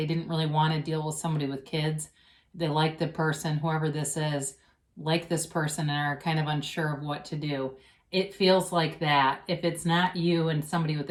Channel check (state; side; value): identical; both; correlation 1.00